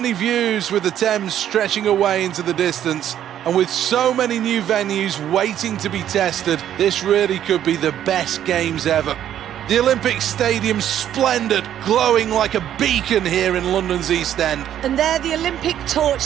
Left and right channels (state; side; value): quieter; left; 10.8 dB